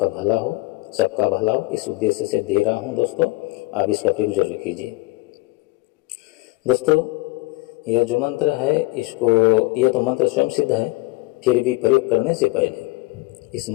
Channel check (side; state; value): right; quieter; 22.2 dB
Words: भला हो, सबका भला हो, इस उद्देश्य से दे रहा हूँ। दोस्तों, आप इसका प्रयोग जरूर कीजिए। दोस्तों, यह जो मंत्र है, यह तो मंत्र स्वयं सिद्ध है, फिर भी प्रयोग करने से पहले इस